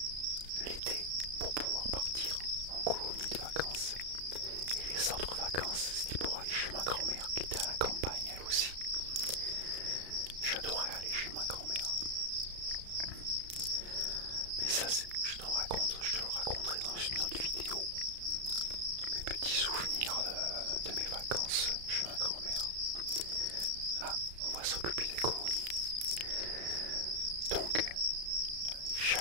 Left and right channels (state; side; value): late; left; 34 ms